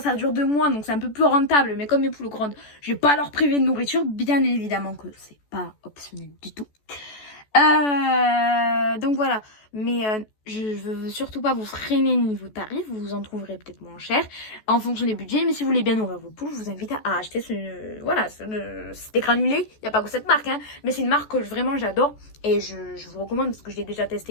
dure 2 mois, donc c'est un peu plus rentable. Mais comme mes poules grandes, je vais pas leur priver de nourriture. Bien évidemment que c'est pas optionnel du tout. Donc voilà. Mais je veux surtout pas vous freiner niveau tarif. Vous en trouverez peut-être moins cher en fonction des budgets. Mais si vous voulez bien nourrir vos poules, je vous invite à acheter des granulés. Il n'y a pas que cette marque, hein, mais c'est une marque que vraiment j'adore. Et je vous recommande parce que je l'ai déjà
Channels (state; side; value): late; right; 14 ms